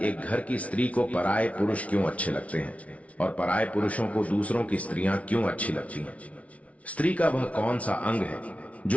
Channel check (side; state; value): right; late; 0.065 ms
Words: एक घर की स्त्री को पराये पुरुष क्यों अच्छे लगते हैं और पराये पुरुषों को दूसरों की स्त्रियां क्यों अच्छी लगती हैं। स्त्री का वह कौन सा अंग है